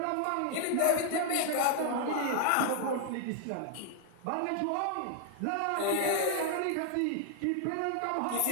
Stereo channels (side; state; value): both; different; correlation 0.00